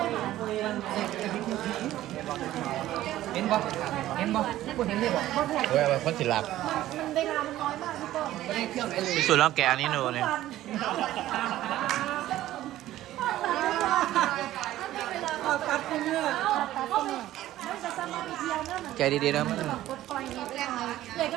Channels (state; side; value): quieter; left; 14.3 dB